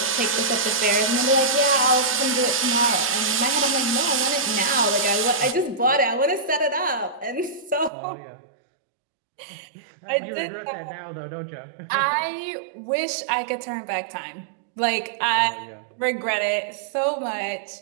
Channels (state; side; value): drops out; left; at 7.9 s